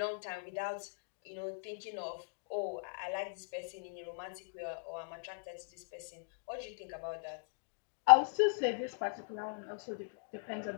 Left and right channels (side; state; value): right; silent; digital silence